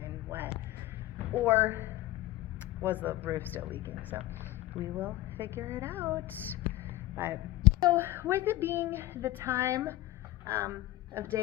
wet. Or was the roof still leaking? So we will figure it out. But so with it being the time of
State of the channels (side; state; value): right; quieter; 16.4 dB